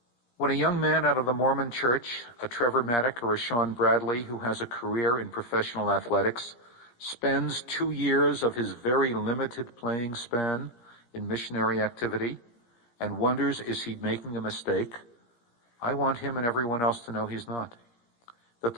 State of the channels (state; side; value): late; right; 17 ms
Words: When a young man out of the Mormon church, a Trevor Maddock or a Sean Bradley who has a career in professional athletics, spends 2 years of his very limited playing span in missionary activity and wonders, is he making a mistake? I want him and everyone else to know he's not. That